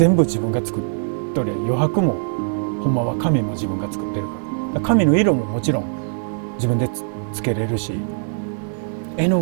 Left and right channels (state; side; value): silent; left; digital silence